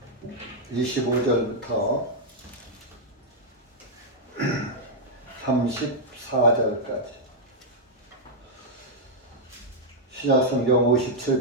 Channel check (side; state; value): both; normal; correlation -0.05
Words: 25절부터 34절까지 신약성경